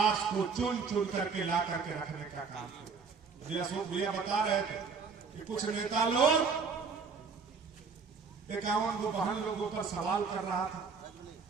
को चुन चुन करके ला करके रखने का काम किया। मुझे अशोक भैया बता रहे थे कि कुछ नेता लोग 51 लोगों पर सवाल कर रहा था।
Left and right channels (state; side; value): quieter; left; 5.3 dB